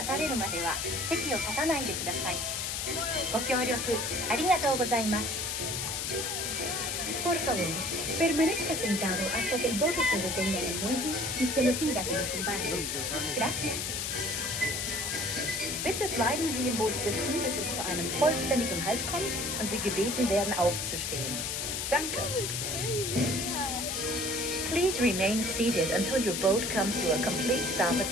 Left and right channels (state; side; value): noise; left; hiss, 2 dB below the sound